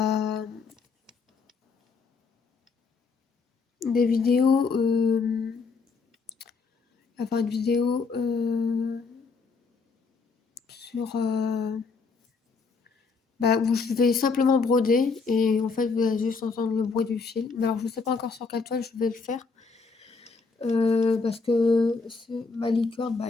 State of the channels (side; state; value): right; quieter; 4.6 dB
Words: des vidéos, enfin une vidéo sur où je vais simplement broder et en fait vous allez juste entendre le bruit du fil. Mais alors je sais pas encore sur quelle toile je vais le faire parce que ma licorne,